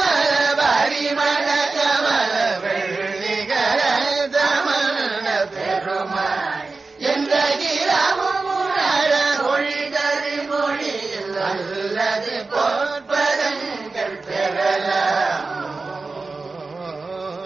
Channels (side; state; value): left; quieter; 3.8 dB